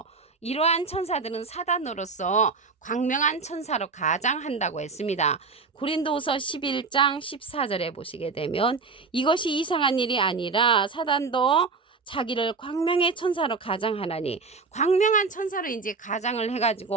이러한 천사들은 사단으로서 광명한 천사로 가장한다고 했습니다. 고린도후서 11장 14절에 보시게 되면 이것이 이상한 일이 아니라 사단도 자기를 광명의 천사로 가장하나니 광명한 천사로 이제 가장을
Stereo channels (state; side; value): quieter; left; 4.5 dB